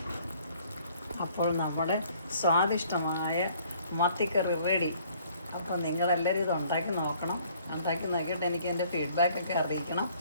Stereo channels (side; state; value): both; inverted; correlation -0.59